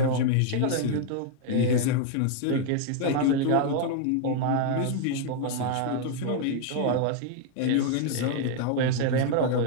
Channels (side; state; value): both; different; correlation 0.00